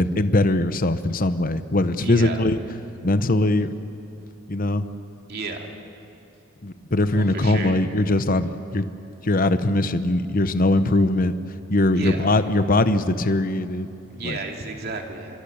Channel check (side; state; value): both; normal; correlation 0.62